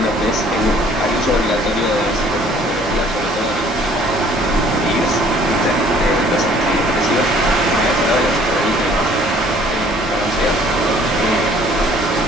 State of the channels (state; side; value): noise; right; hum, 16 dB below the sound